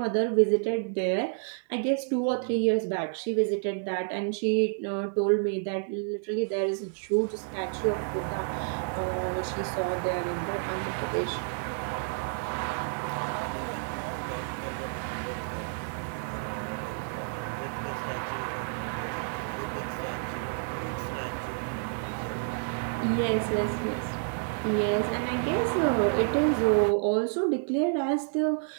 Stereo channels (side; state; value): left; silent; 58 dB below the other